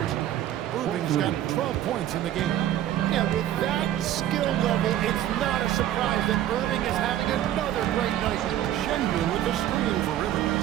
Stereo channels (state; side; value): quieter; left; 12.3 dB